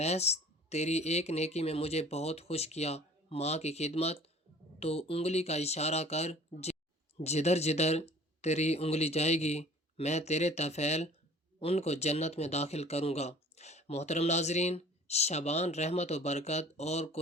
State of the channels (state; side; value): normal; both; correlation 0.48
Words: تیری ایک نیکی میں مجھے بہت خوش کیا، ماں کی خدمت، تو انگلی کا اشارہ کر، جدھر جدھر تیری انگلی جائے گی میں تیرے طفیل ان کو جنت میں داخل کروں گا۔ محترم ناظرین، شعبان رحمت و برکت اور